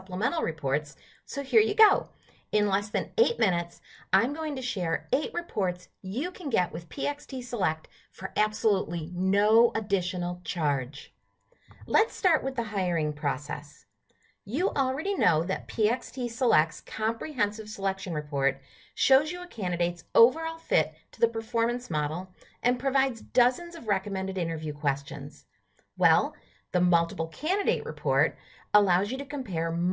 Reports, so here you go. In less than 8 minutes, I'm going to share 8 reports you can get with PXT Select for absolutely no additional charge. Let's start with the hiring process. You already know that PXT Select's Comprehensive Selection Report shows you a candidate's overall fit to the performance model and provides dozens of recommended interview questions. Well, the Multiple Candidate Report allows you to compare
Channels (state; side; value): identical; both; correlation 1.00